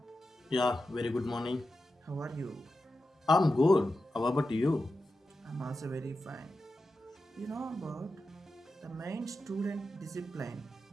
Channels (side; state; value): both; normal; correlation 0.91